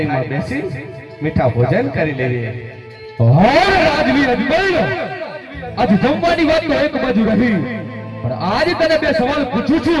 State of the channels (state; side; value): identical; both; correlation 1.00